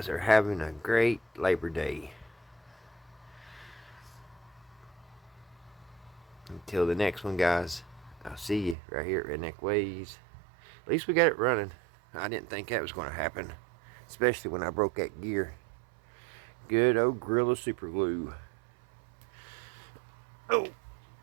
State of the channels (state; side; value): drops out; left; at 8.8 s